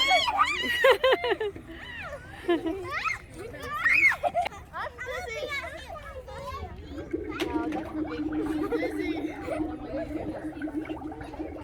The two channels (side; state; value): both; identical; correlation 1.00